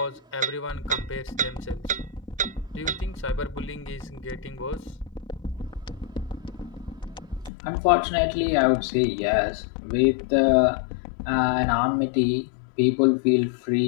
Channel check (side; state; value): right; drops out; at 7.5 s